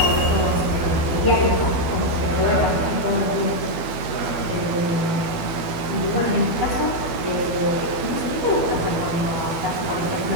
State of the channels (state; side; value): late; left; 12 ms